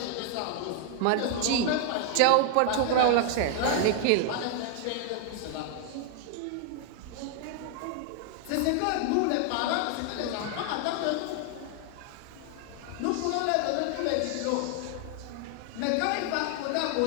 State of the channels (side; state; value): both; different; correlation 0.00